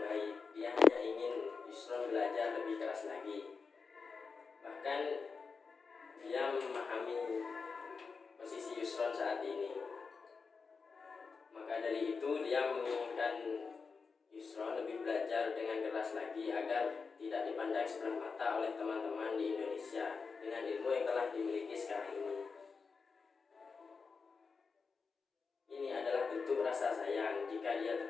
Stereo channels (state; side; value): quieter; right; 5.0 dB